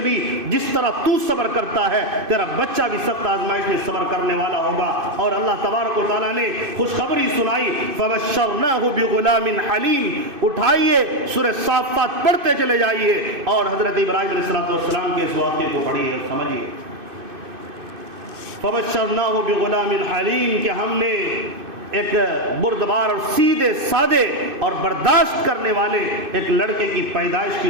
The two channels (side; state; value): left; late; 2.6 ms